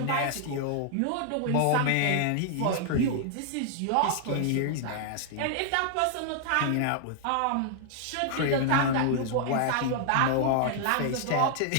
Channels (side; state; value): both; different; correlation -0.01